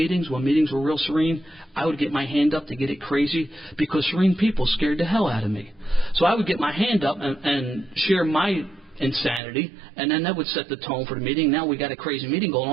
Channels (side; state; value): left; drops out; at 9.4 s